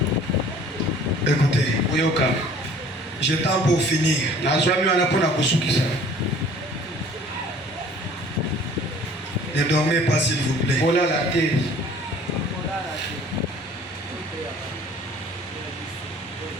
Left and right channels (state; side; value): normal; both; correlation 0.51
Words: Écoutez, Uyoka. j'ai temps pour finir. Ne dormez pas s'il vous plaît. Voilà la terre.